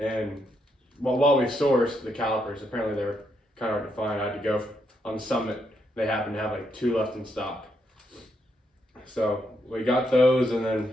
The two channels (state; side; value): normal; both; correlation 0.78